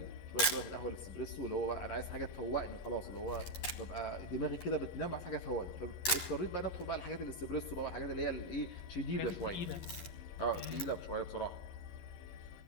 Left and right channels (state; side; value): late; right; 11 ms